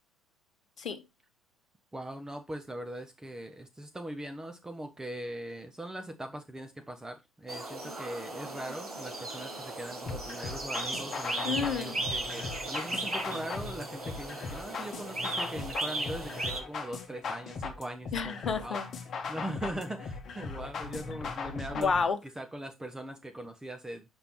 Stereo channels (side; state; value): both; normal; correlation 0.71